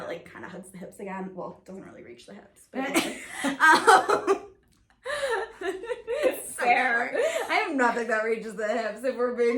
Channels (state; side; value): identical; both; correlation 1.00